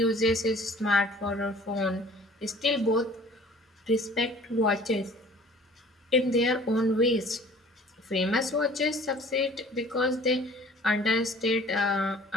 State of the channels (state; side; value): normal; both; correlation 0.49